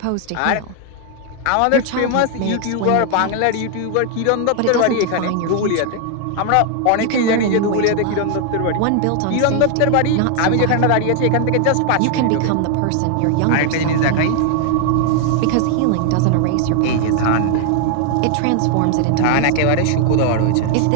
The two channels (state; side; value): different; both; correlation 0.00